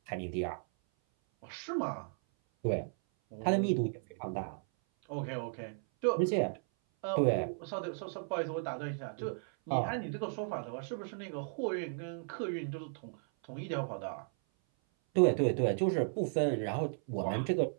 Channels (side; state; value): left; silent; 54 dB below the other